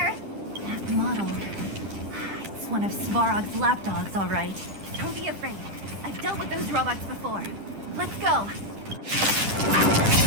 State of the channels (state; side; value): late; left; 10 ms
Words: That model. It's one of Svarog's lapdogs, all right. Don't be afraid. I've dealt with those robots before. Let's go.